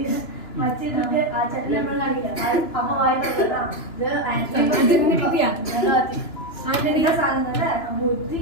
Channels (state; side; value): late; right; 2.9 ms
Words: മറ്റേ ആ ചട്ടി നമ്മൾ കാണില്ല, അമ്മ വായിട്ടാ സാധനം ബുദ്ധി